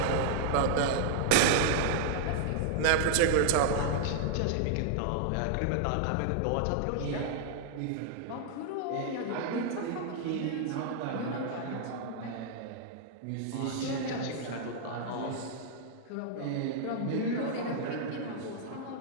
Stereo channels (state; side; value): different; both; correlation -0.01